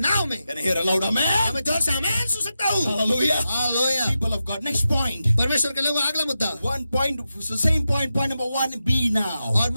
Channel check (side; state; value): both; inverted; correlation -0.90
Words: नाव में। Can I hear a loud amen? मैं जोर से आमीन सुन सकता हूँ। Hallelujah. Hallelujah. People of God. Next point. परमेश्वर के लोगों, अगला मुद्दा। One point, the same point number 1B now. और